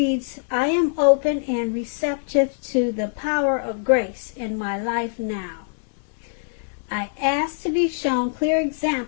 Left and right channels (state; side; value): silent; right; digital silence